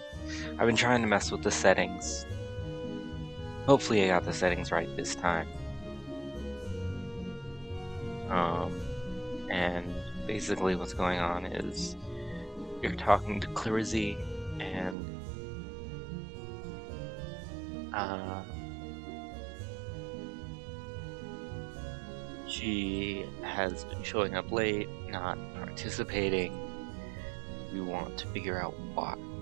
I've been trying to mess with the settings. Hopefully I got the settings right this time. And basically what's going on is you're talking to Clarizy, and she has been showing up late, not participating. We want to figure out why.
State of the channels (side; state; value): left; drops out; at 15.0 s